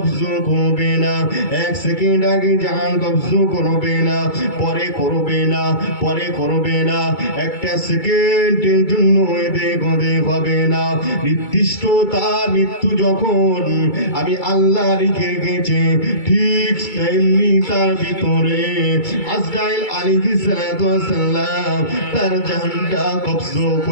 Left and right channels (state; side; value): late; right; 2.3 ms